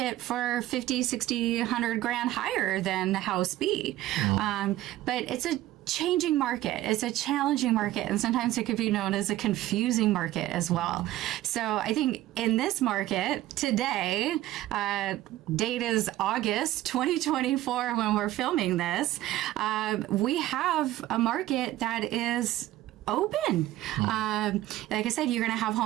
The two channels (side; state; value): left; quieter; 15.1 dB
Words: for 50, 60, 100 grand higher than house B. But it's a changing market. It's a challenging market, and sometimes it could be known as a confusing market as well. So I think in this market today, date is August 2024 when we're filming this, we have a market that is open. Like I said, you're going to have